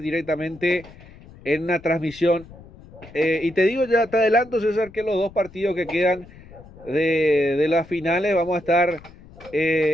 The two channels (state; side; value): noise; left; rumble, 21 dB below the sound